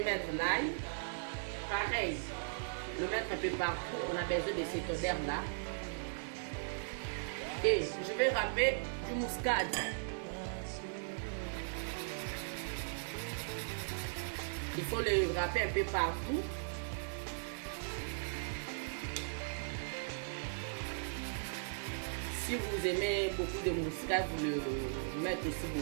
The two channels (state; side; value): silent; left; digital silence